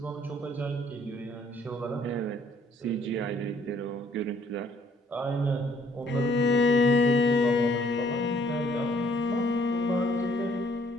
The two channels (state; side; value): normal; both; correlation 0.62